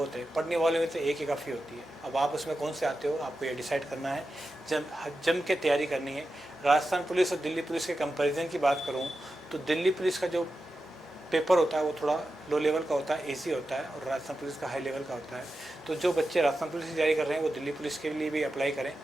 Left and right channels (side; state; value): both; normal; correlation 0.91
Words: है, पढ़ने वालों में तो एक ही काफ़ी होती है। अब आप उसमें कौन से आते हो, आपको ये डिसाइड करना है, जम के तैयारी करनी है। राजस्थान पुलिस और दिल्ली पुलिस के कंपैरिजन की बात करूं तो दिल्ली पुलिस का जो पेपर होता है वो थोड़ा लो लेवल का होता है, ईजी होता है, और राजस्थान पुलिस का हाई लेवल का होता है। तो जो बच्चे राजस्थान पुलिस की तैयारी कर रहे हैं वो दिल्ली पुलिस के लिए भी अप्लाई करें,